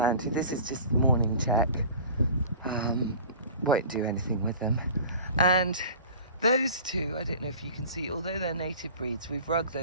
to. This is just morning check. Won't do anything with them. And those two, I don't know if you can see, although they're native breeds, we've rugged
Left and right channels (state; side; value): inverted; both; correlation -0.41